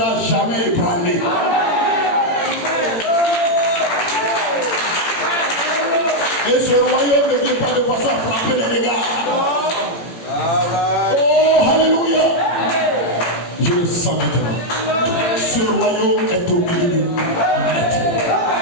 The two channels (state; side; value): late; right; 18 ms